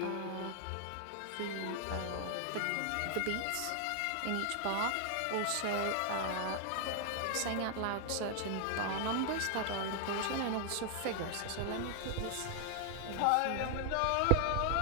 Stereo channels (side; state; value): both; different; correlation 0.00